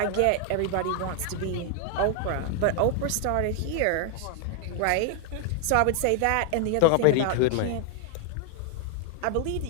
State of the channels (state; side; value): different; both; correlation 0.00